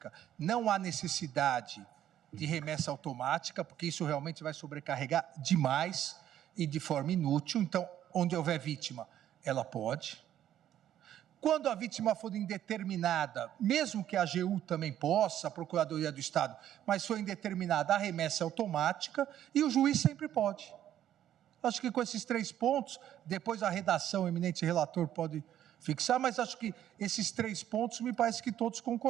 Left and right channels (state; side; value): quieter; left; 11.3 dB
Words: não há necessidade de remessa automática, porque isso realmente vai sobrecarregar demais e de forma inútil. Então, onde houver vítima, ela pode. Quando a vítima for indeterminada, mesmo que a AGU também possa, a Procuradoria do Estado, mas for indeterminada, a remessa é automática e o juiz sempre pode. Acho que com esses 3 pontos, depois a redação, o eminente relator pode fixar, mas acho que esses 3 pontos me parece que todos